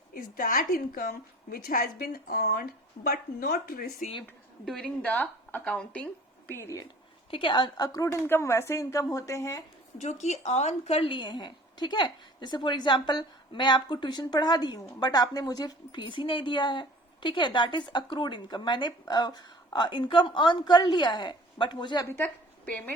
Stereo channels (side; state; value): both; normal; correlation 0.48